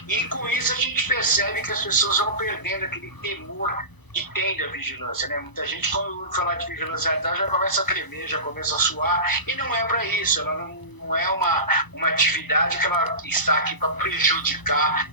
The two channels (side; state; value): right; late; 1.0 ms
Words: E com isso a gente percebe que as pessoas vão perdendo aquele temor que tem da vigilância, né? Muita gente, quando ouve falar de vigilância sanitária, já começa a tremer, já começa a suar, e não é para isso, ela não não é uma atividade que ela está aqui para prejudicar